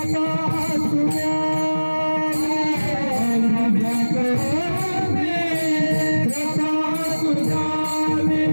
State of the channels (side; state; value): both; inverted; correlation -1.00